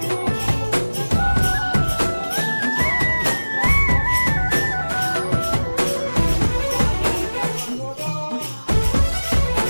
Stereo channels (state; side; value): inverted; both; correlation -1.00